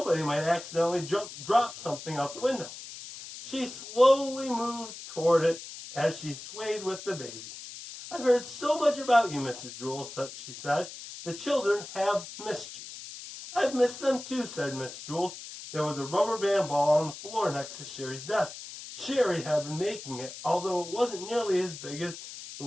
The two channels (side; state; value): left; noise; hiss, 12 dB below the sound